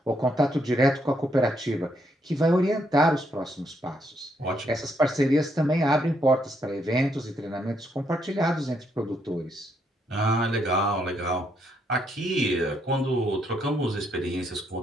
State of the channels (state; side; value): normal; both; correlation 0.75